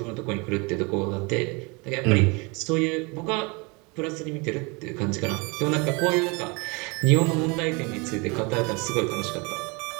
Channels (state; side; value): quieter; left; 28.8 dB